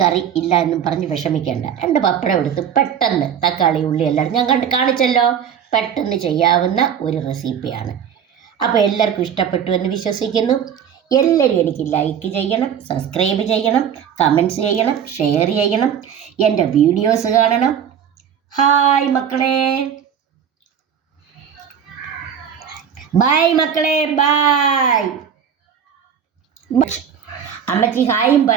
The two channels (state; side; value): quieter; left; 8.2 dB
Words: കറി ഇല്ല എന്നും പറഞ്ഞ് വിഷമിക്കേണ്ട. 2 പപ്പടം എടുത്ത് പെട്ടെന്ന് തക്കാളി ഉള്ളി എല്ലാം ഞാൻ കാണിച്ചല്ലോ, പെട്ടെന്ന് ചെയ്യാവുന്ന ഒരു റെസിപ്പിയാണ്. അപ്പോൾ എല്ലാവർക്കും ഇഷ്ടപ്പെട്ടു എന്ന് വിശ്വസിക്കുന്നു. എല്ലാവരും എനിക്ക് ലൈക്ക് ചെയ്യണം, സബ്സ്ക്രൈബ് ചെയ്യണം, കമൻറ്റ്സ് ചെയ്യണം, ഷെയർ ചെയ്യണം, എൻ്റെ വീഡിയോസ് കാണണം. ഹായ് മക്കളെ, ബായ് മക്കളെ, ബായ്. അമ്മച്ചി ഹായും